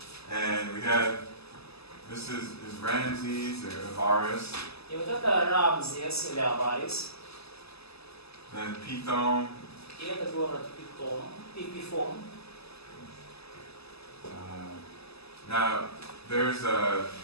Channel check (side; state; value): right; late; 0.79 ms